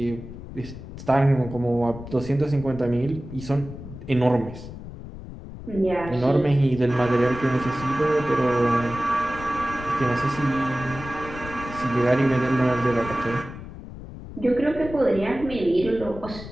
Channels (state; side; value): noise; left; rumble, 12 dB below the sound